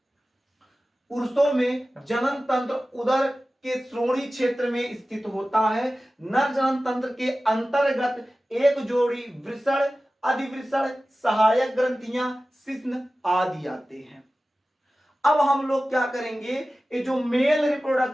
पुरुषों में जनन तंत्र उदर के श्रोणि क्षेत्र में स्थित होता है। नर जनन तंत्र के अंतर्गत एक जोड़ी वृषण, अधिवृषण, सहायक ग्रंथियां, शिश्न आदि आते हैं। अब हम लोग क्या करेंगे, ये जो मेल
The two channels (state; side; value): normal; both; correlation 0.96